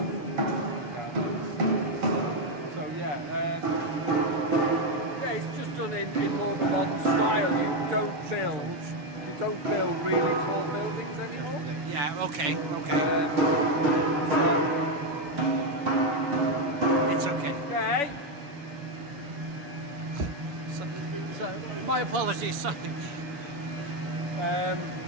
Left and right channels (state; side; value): late; left; 7.0 ms